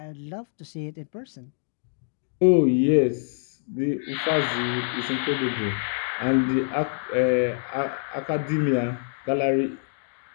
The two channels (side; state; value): right; silent; digital silence